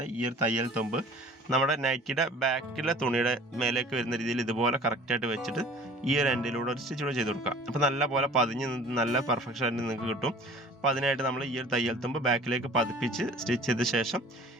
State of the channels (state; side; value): normal; both; correlation 0.47